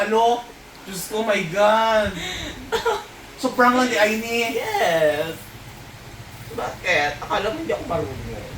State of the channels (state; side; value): identical; both; correlation 1.00